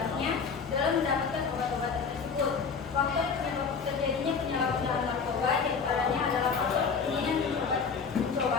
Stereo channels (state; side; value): quieter; right; 5.6 dB